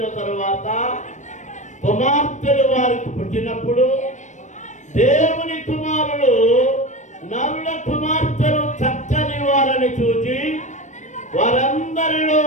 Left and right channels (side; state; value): right; late; 0.35 ms